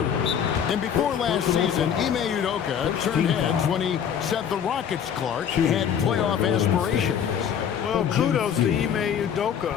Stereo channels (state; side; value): quieter; right; 8.3 dB